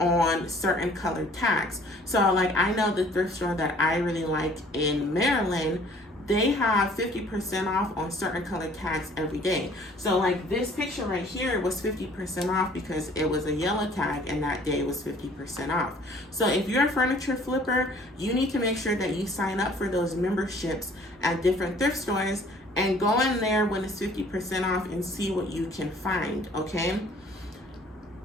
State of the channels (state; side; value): normal; both; correlation 0.55